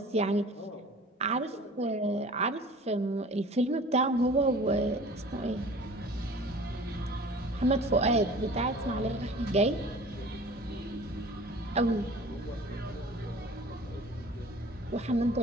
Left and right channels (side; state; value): both; normal; correlation 0.44